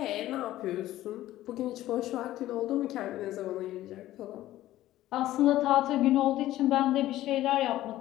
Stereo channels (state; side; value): quieter; right; 14.7 dB